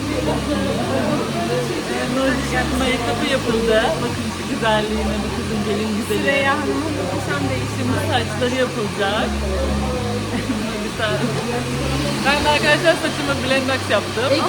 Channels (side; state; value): both; identical; correlation 1.00